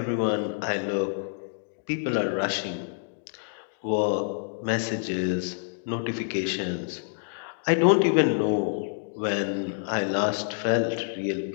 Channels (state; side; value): silent; right; digital silence